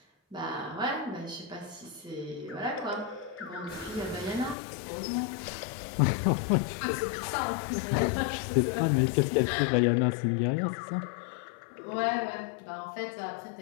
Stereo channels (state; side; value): drops out; right; at 4.5 s